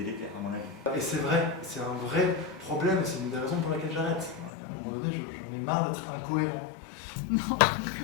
à mon avis. Et c'est vrai, c'est un vrai problème, c'est une des raisons pour laquelle j'arrête. À un moment donné, j'en ai marre d'être incohérent. Non.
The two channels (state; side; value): drops out; right; at 4.5 s